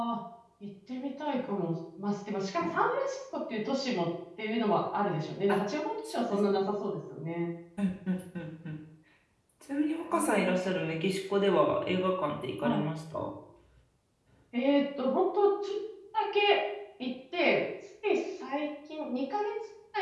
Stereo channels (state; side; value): identical; both; correlation 1.00